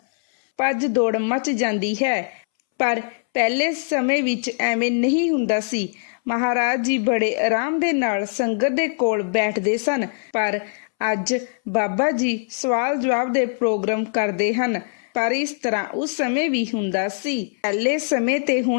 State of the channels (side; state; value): right; silent; 64 dB below the other